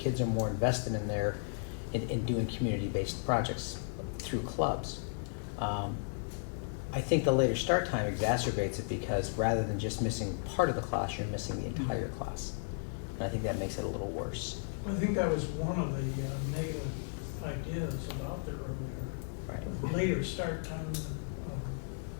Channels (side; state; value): right; silent; digital silence